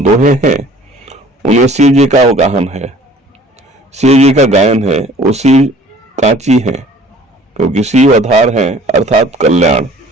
हैं उनमें शिव जी का अवगाहन है, शिव जी का गायन है। वो शिव कांची है क्योंकि शिव आधार है अर्थात कल्याण।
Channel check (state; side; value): normal; both; correlation 0.51